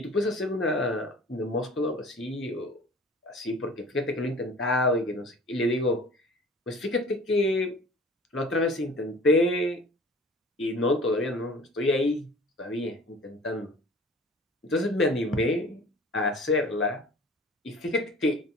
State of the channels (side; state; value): both; normal; correlation 0.45